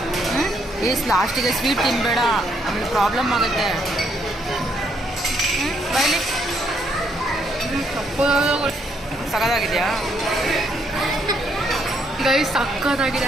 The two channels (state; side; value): normal; both; correlation 0.72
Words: ಈಸ್ ಲಾಸ್ಟಿಗೆ ಸ್ವೀಟ್ ತಿನ್ನಬೇಡ, ಆಮೇಲೆ ಪ್ರಾಬ್ಲಮ್ ಆಗುತ್ತೆ. ಬೈಲಿ ಸಕ್ಕತ್ತಾಗಿದೆಯಾ ಗೈಸ್? ಸಕ್ಕತ್ತಾಗಿದೆ